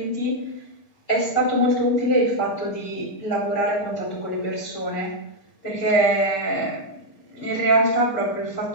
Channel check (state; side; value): late; right; 6.5 ms